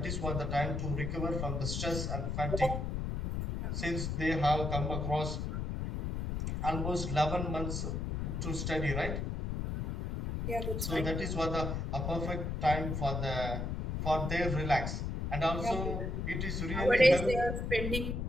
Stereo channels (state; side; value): noise; left; rumble, 2 dB below the sound